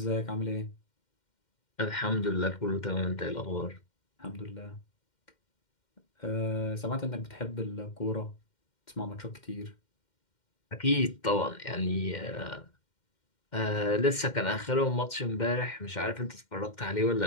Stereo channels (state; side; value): late; right; 2.1 ms